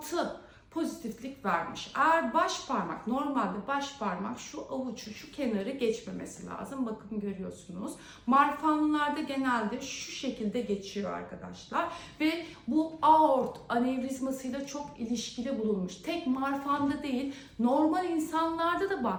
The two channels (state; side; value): identical; both; correlation 1.00